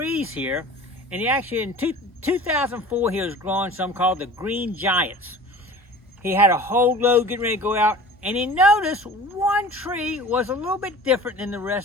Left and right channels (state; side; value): normal; both; correlation 0.41